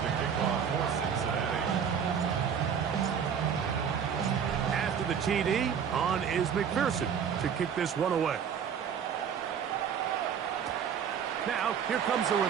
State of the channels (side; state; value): left; quieter; 7.7 dB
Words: to kick off for Cincinnati. After the TD, on is McPherson to kick this one away. Now, here comes a